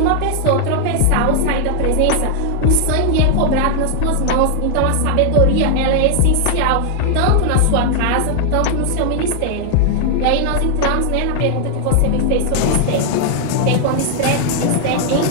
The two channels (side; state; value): both; different; correlation 0.00